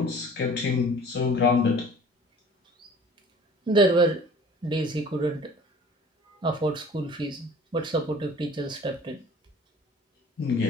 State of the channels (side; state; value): both; normal; correlation 0.47